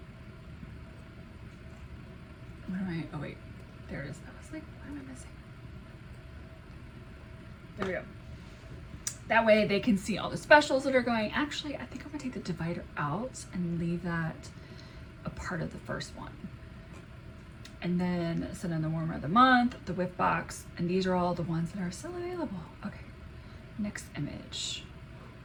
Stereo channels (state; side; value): identical; both; correlation 1.00